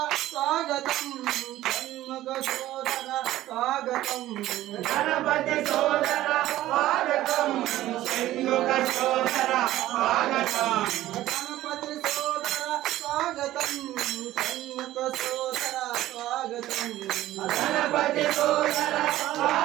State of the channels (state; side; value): quieter; left; 14.8 dB